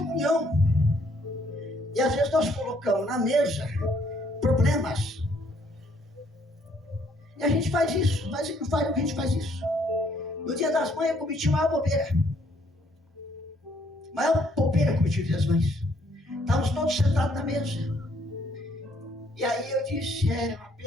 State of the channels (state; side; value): normal; both; correlation 0.67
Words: E às vezes nós colocamos na mesa problemas. E a gente faz isso. A gente faz isso. No dia das mães eu cometi maior bobeira. Maior bobeira cometi no dia das mães. Estávamos todos sentados na mesa. E aí eu disse, é uma